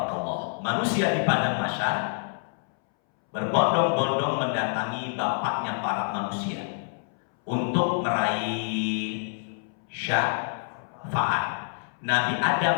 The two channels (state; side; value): silent; right; 60 dB below the other